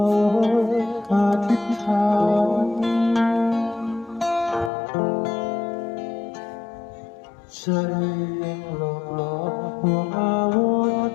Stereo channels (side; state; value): right; drops out; at 4.7 s